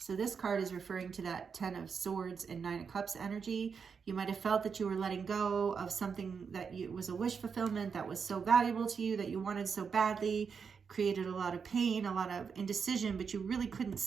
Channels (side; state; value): left; quieter; 6.0 dB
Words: this card is referring to that 10 of Swords and 9 of Cups energy. You might have felt that you were letting go of something that was a wish fulfillment that was so valuable to you, that you wanted so badly, created a lot of pain, a lot of indecision, but you really couldn't